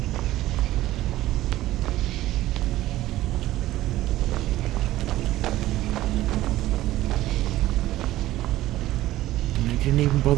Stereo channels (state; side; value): quieter; left; 15.5 dB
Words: I didn't even